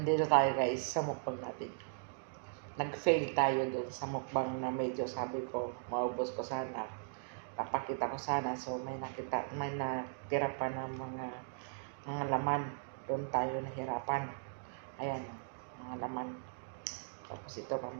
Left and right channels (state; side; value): silent; left; digital silence